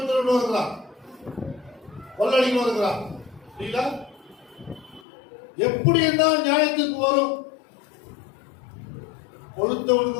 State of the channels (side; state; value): right; drops out; at 5.0 s